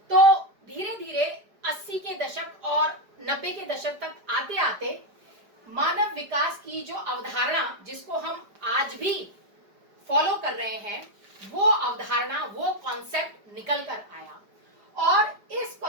तो धीरे धीरे 80 के दशक और 90 के दशक तक आते आते मानव विकास की जो अवधारणा, जिसको हम आज भी फॉलो कर रहे हैं, वो अवधारणा, वो कॉन्सेप्ट निकल कर आया। और इस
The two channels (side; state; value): left; late; 5.0 ms